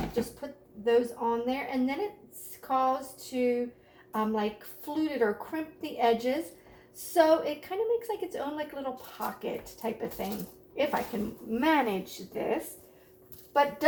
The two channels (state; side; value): identical; both; correlation 1.00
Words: Just put those on there. And then it's caused to like flute it or crimp the edges. So it kind of makes like its own like little pocket type of thing, if I can manage this. But